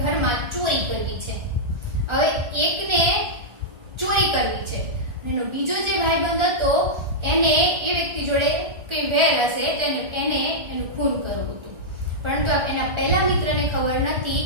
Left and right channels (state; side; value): late; left; 1.4 ms